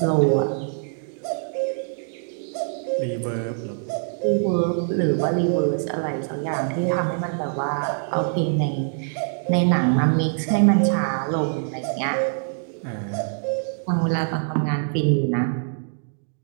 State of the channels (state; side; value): silent; left; digital silence